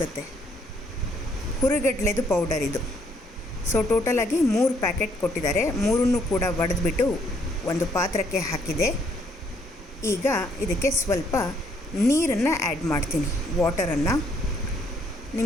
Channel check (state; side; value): normal; both; correlation 0.68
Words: ಹುರಿಗಡ್ಲೆದು ಪೌಡರ್ ಇದು. ಸೊ ಟೋಟಲಾಗಿ 3 ಪ್ಯಾಕೆಟ್ ಕೊಟ್ಟಿದ್ದಾರೆ. 3 ಕೂಡ ಒಡೆದ್ಬಿಟ್ಟು ಒಂದು ಪಾತ್ರಕ್ಕೆ ಹಾಕಿದೆ. ಈಗ ಇದಕ್ಕೆ ಸ್ವಲ್ಪ ನೀರನ್ನು ಆ್ಯಡ್ ಮಾಡ್ತೀನಿ, ವಾಟರನ್ನು.